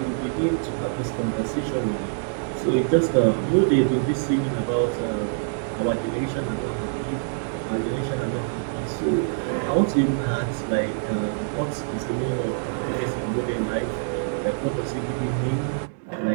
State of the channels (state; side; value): silent; left; 62 dB below the other